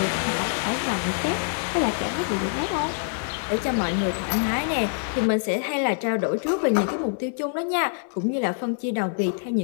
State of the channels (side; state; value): right; silent; digital silence